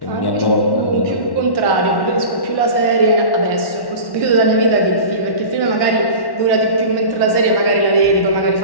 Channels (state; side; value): late; right; 1.1 ms